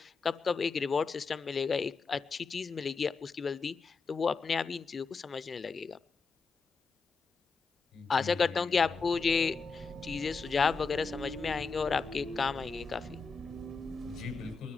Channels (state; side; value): quieter; right; 4.7 dB